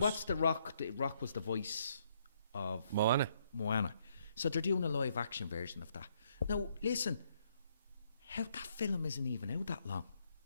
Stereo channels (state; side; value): inverted; both; correlation -0.72